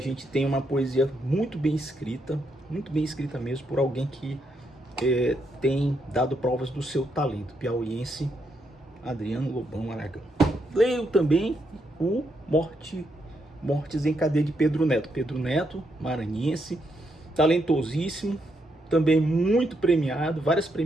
tem uma poesia muito bem escrita mesmo, por alguém que tem dado provas do seu talento, piauiense, Adriano Lobão Aragão. Leio também o Mortes em Cadeia de Pedro Neto. Pedro Neto, maranhense, talentosíssimo, também muito premiado, várias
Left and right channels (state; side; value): normal; both; correlation 0.79